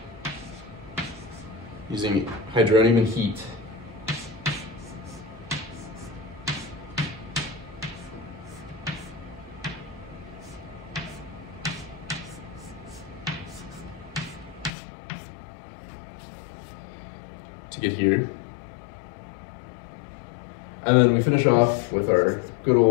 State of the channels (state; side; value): drops out; right; at 14.7 s